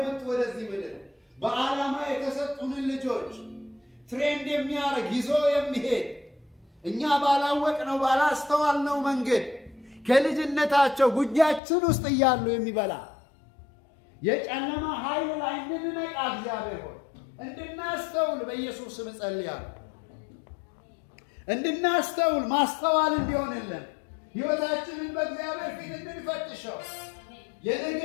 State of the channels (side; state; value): right; drops out; at 11.6 s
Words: ወደዚህ ምድር በዓላማ የተሰጡንን ልጆች ትሬንድ የሚያደርግ ይዞ የሚሄድ እኛ ባላወቅነው ባላስተዋልነው መንገድ ከልጅነታቸው ጉጃችን ውስጥ እያሉ የሚበላ የጨለማ ኃይል ላይ እንድንነቃ እግዚአብሔር ሆይ እንድናስተውል በኢየሱስ ስም ጸልያለሁ። እንድናስተውል ማስተዋል እንዲሆንልን ሕይወታችንን በእግዚአብሔር ፊት እንድንፈትሸው የነገ